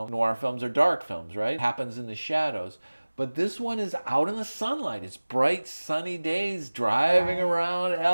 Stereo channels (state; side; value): inverted; both; correlation -1.00